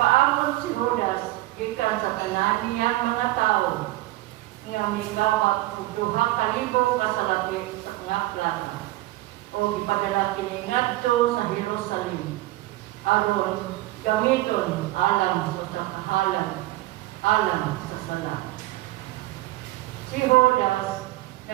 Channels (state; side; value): quieter; left; 18.0 dB